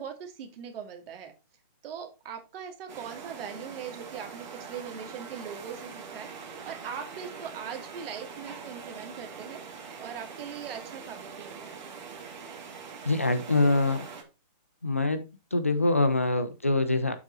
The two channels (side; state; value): both; inverted; correlation -0.66